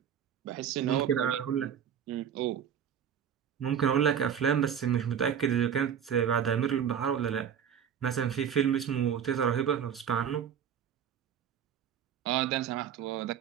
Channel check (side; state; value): left; quieter; 8.5 dB